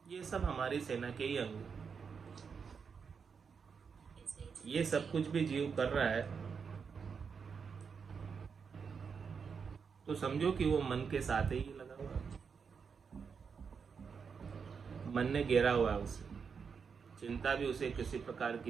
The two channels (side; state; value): left; quieter; 6.0 dB